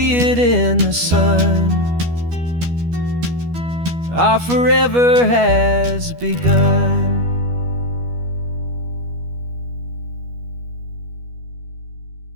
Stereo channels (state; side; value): late; left; 12 ms